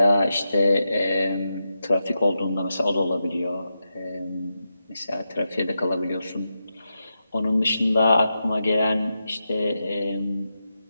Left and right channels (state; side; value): inverted; both; correlation -0.88